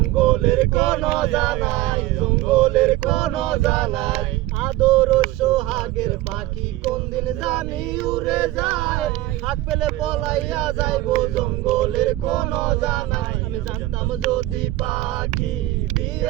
কোন জানাই, জঙ্গলের কোন জানাই। আদর সোহাগের পাখি কোন দিন জানি উড়ে যায়, হাত পেলে পলাইয়া যাইব জঙ্গলের কোন জানাই। আমি জানতাম যদি পাখি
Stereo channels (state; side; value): quieter; left; 16.8 dB